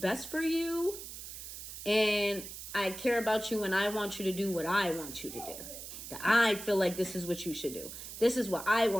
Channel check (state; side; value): noise; right; hiss, 10 dB below the sound